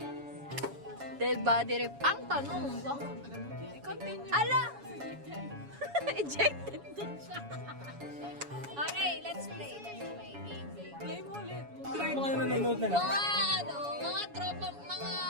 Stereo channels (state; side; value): late; left; 7.1 ms